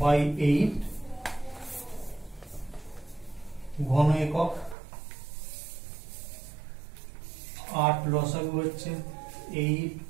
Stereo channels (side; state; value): left; drops out; at 4.8 s